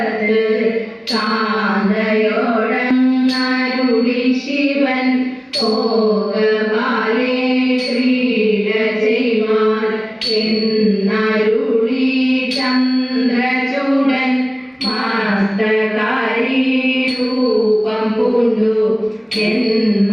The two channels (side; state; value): both; identical; correlation 1.00